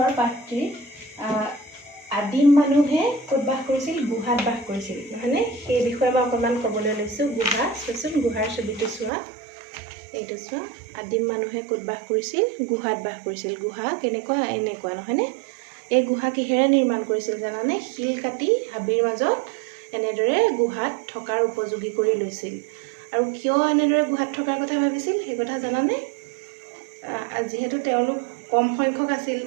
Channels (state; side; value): drops out; left; at 9.1 s